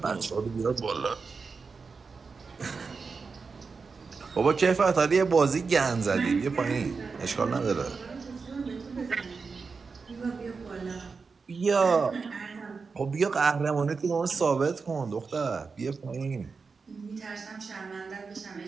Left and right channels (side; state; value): left; quieter; 4.8 dB